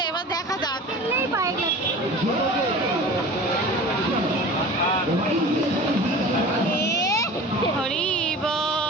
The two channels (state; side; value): normal; both; correlation 0.38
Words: এবার দেখা যাক। পাই হরি